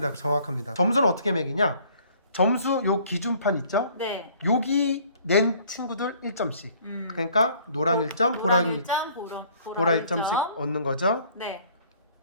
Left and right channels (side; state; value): both; inverted; correlation -0.58